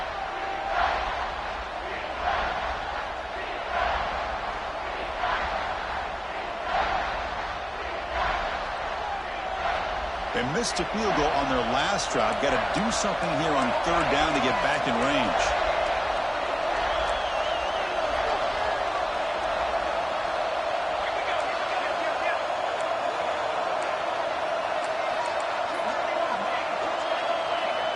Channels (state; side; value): identical; both; correlation 1.00